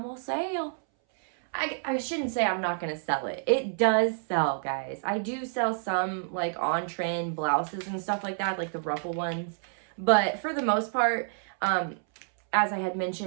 gonna sell. I shouldn't say I'm not gonna sell it. It does sell, guys. I do sell some like on trend blouses and stuff like that, like the ruffle ones. But for the most part, as I had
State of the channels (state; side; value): silent; left; 59 dB below the other